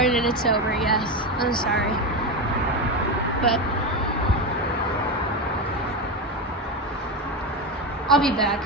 it's over. Yes, I'm sorry, but I'll be back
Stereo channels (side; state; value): both; normal; correlation 0.15